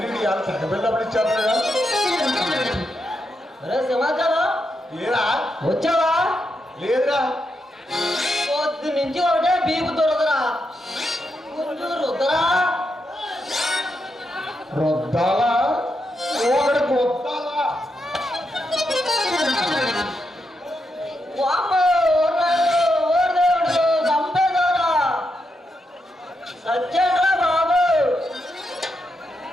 ఇవాళ తగ్గబెళ్ళప్పుడు ఇచ్చారు కదా. అరే సమాచారం ఏరా వచ్చావా? లేదురా. పొద్దు నుంచి ఒకటే బీపు దొరకరా, కొంచెం రుద్దరా. రుద్దాలా ఒకటి కొత్తాలా. వామ్మో, ఓ దేవుడు, చంపేశారా? సత్యంరా బాబు.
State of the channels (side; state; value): both; normal; correlation 0.83